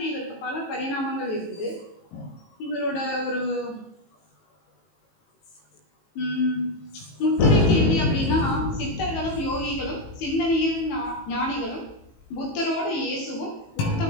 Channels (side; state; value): right; late; 18 ms